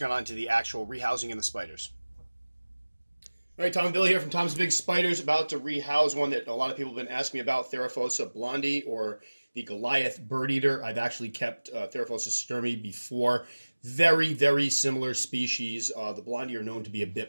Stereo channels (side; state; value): both; inverted; correlation -1.00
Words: on to the actual rehousing and the spiders. All right, Tom and Bill here from Tom's Big Spiders, about to rehouse one that a lot of people have been asking me about, Theraphosa Blondi or the Goliath Birdeater. I've actually kept Theraphosa sturmi before. Very, very similar species. The Blondi are known to be a